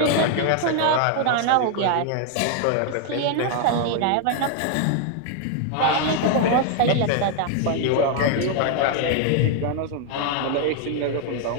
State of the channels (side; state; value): both; different; correlation 0.00